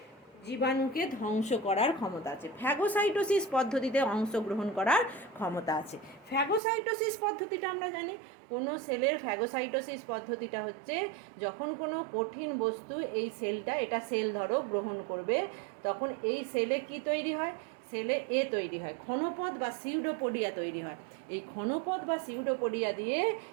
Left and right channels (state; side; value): drops out; left; at 6.6 s